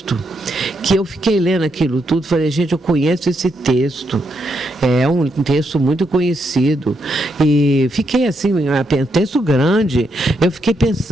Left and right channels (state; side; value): normal; both; correlation 0.80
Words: que eu fiquei lendo aquilo tudo, falei, gente, eu conheço esse texto, é um texto muito conhecido, e fiquei assim, um texto grande, eu fiquei